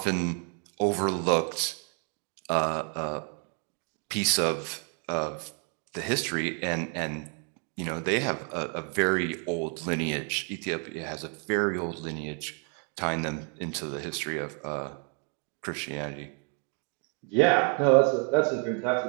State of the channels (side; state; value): left; quieter; 39.0 dB